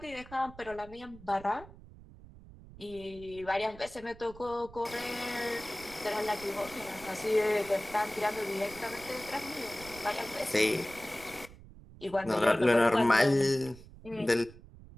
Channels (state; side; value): noise; right; rumble, 19 dB below the sound